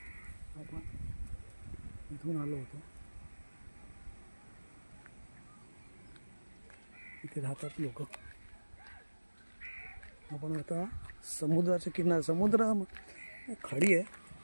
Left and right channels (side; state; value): both; inverted; correlation -1.00